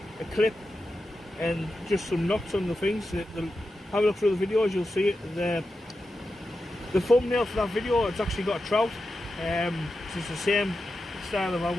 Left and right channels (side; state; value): both; normal; correlation 0.90